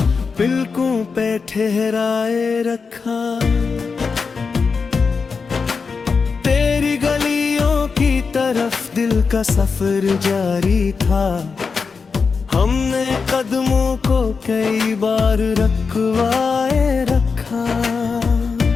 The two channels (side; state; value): right; quieter; 5.1 dB